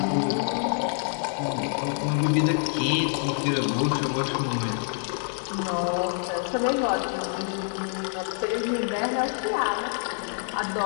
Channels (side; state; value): right; silent; 60 dB below the other